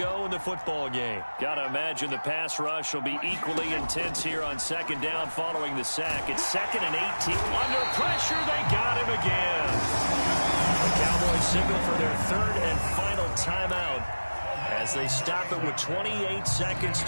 in the football game. Got to imagine the pass rush will be equally intense here on 2nd down following the sack. It's 2nd and 18. Under pressure, they got him again. The Cowboys signal for their 3rd and final timeout as they stop it with 28 seconds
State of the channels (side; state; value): both; inverted; correlation -1.00